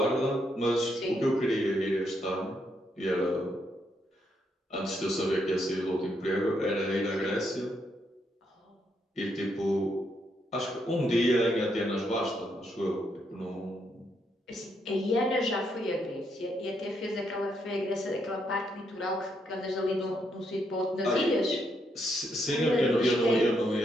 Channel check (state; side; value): normal; both; correlation 0.77